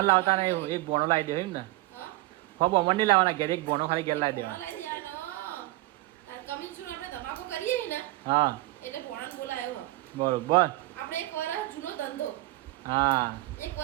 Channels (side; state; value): left; quieter; 19.1 dB